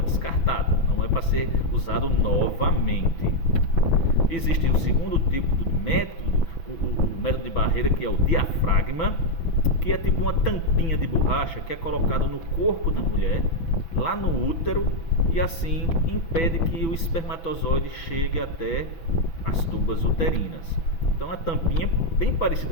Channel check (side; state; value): right; late; 6.0 ms